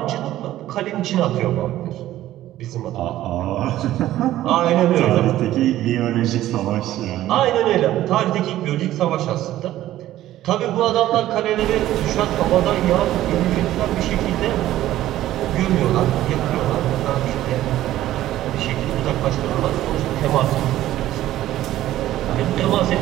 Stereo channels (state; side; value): quieter; left; 14.0 dB